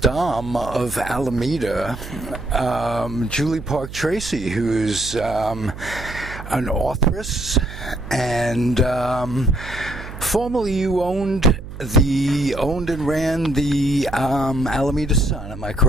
Dame of Alameda, Julie Park Tracey, who's an authoress, and formerly you owned and ran the Alameda Sun, am I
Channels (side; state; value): right; noise; hum, 12 dB below the sound